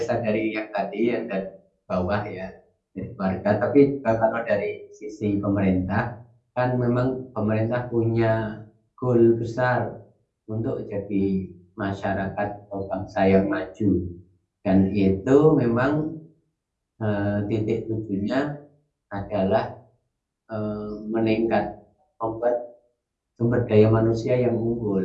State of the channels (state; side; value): identical; both; correlation 1.00